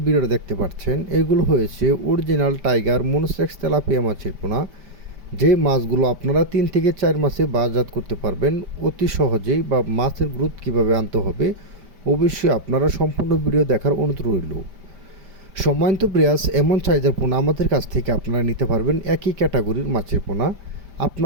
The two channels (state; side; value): late; left; 5.1 ms